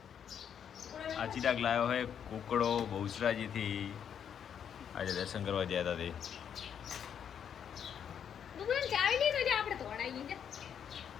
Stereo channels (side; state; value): right; quieter; 8.3 dB